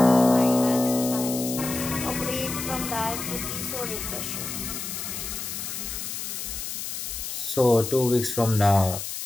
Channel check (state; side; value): noise; left; hiss, 6 dB below the sound